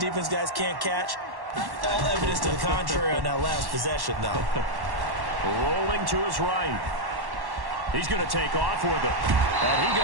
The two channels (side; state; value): left; late; 1.1 ms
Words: guys can't catch. All evidence to the contrary on that last possession, though. Rolling to his right. He's going to take off with it. And he